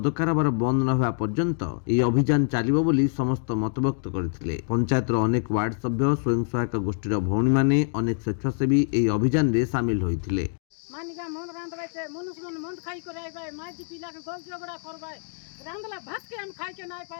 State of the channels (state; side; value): silent; right; digital silence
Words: କାରବାର ବନ୍ଦ ନ ହେବା ପର୍ଯ୍ୟନ୍ତ ଏହି ଅଭିଯାନ ଚାଲିବ ବୋଲି ସମସ୍ତ ମତବ୍ୟକ୍ତ କରିଥିଲେ। ପଞ୍ଚାୟତର ଅନେକ ୱାର୍ଡ ସଭ୍ୟ, ସ୍ୱୟଂ ସହାୟକ ଗୋଷ୍ଠୀର ଭଉଣୀମାନେ, ଅନେକ ସ୍ୱେଚ୍ଛାସେବୀ ଏହି ଅଭିଯାନରେ ସାମିଲ ହୋଇଥିଲେ। मानिका मन रांधवाय छे मनुष्य मन मन खाई करे आइबाय माजी पिला के गोल झगड़ा करबाय रांधला भात के हम खाई के नाय